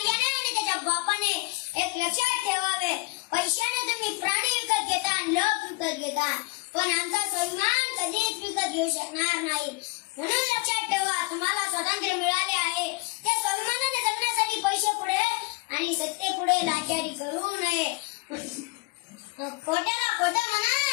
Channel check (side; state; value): right; quieter; 26.5 dB